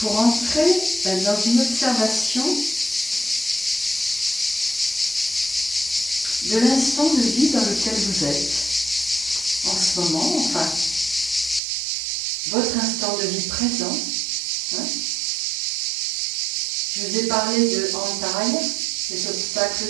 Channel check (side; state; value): left; drops out; at 11.6 s